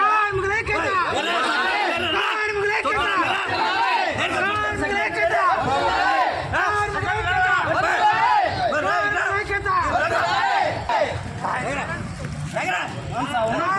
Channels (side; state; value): both; identical; correlation 1.00